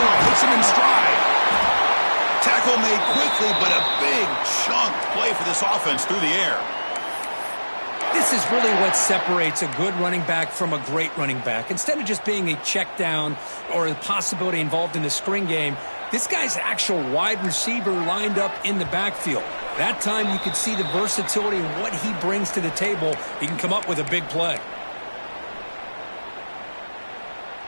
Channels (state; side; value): inverted; both; correlation -1.00